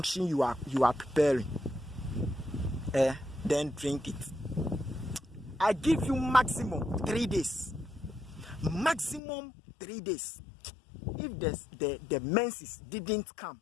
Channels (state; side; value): drops out; right; at 9.2 s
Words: you are preparing. Then drink it. I give you maximum 3 days. Maximum 3 days. If the menses didn't come,